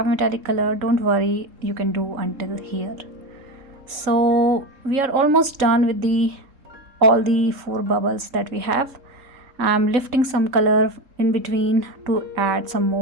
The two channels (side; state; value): left; late; 3.7 ms